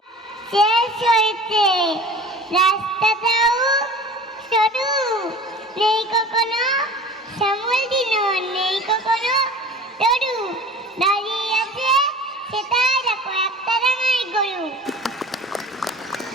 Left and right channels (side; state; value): both; normal; correlation 0.41